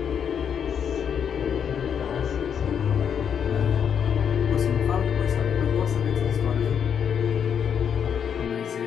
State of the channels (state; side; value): quieter; right; 7.9 dB